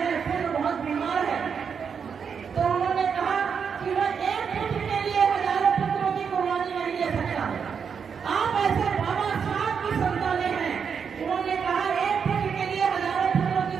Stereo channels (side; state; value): left; quieter; 6.6 dB